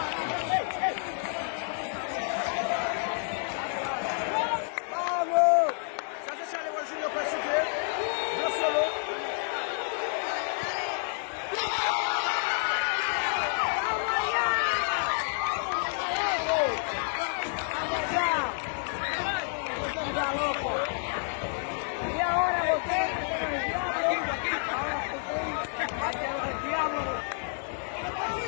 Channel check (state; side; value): silent; right; 58 dB below the other